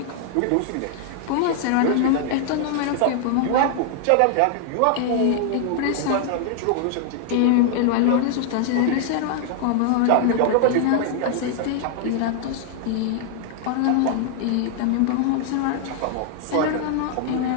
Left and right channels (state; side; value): different; both; correlation 0.00